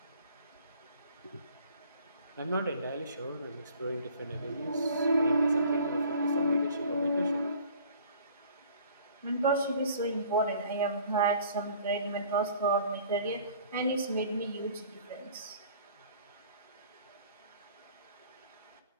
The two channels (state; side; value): inverted; both; correlation -0.52